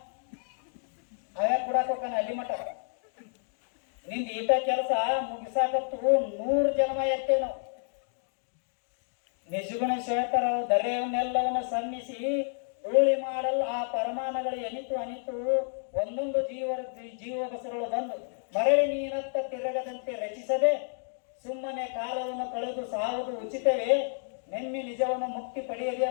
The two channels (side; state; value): right; silent; digital silence